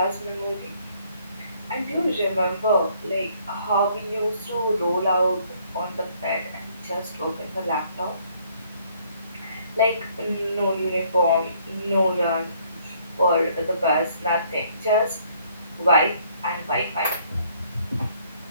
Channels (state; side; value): inverted; both; correlation -0.64